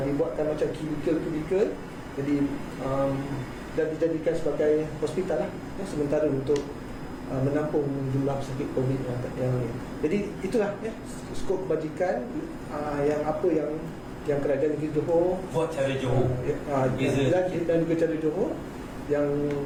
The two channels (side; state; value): both; identical; correlation 1.00